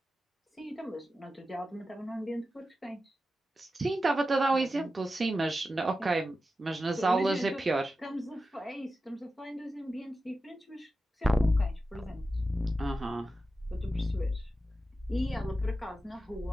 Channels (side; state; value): both; normal; correlation 0.92